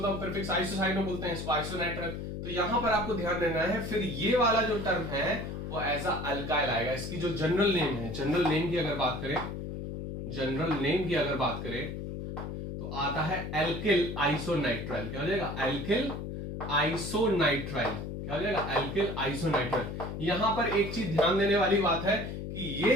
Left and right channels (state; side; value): noise; left; hum, 6 dB below the sound